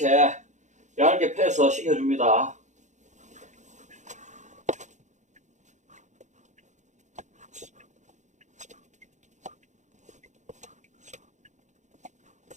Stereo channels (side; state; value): left; late; 0.35 ms